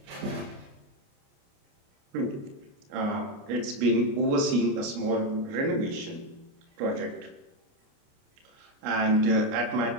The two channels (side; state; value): left; late; 29 ms